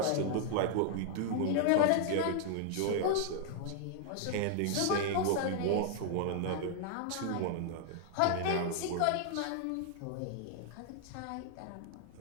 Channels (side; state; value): both; different; correlation 0.00